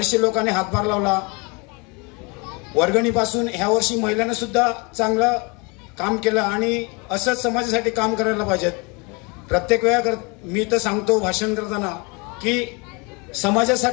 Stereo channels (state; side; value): quieter; right; 29.5 dB